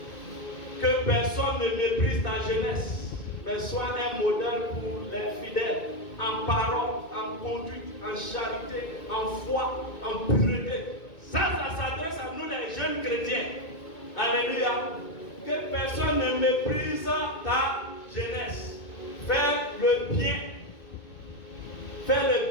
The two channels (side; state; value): right; late; 2.2 ms